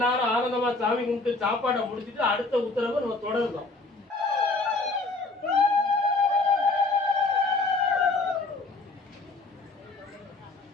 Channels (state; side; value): quieter; right; 3.5 dB